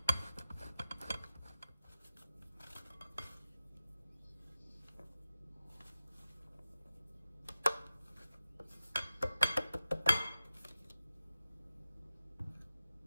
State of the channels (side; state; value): both; inverted; correlation -0.93